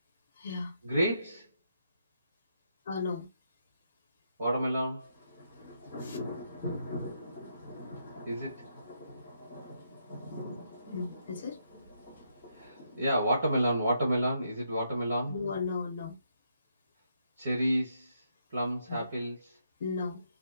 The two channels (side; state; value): both; inverted; correlation -0.77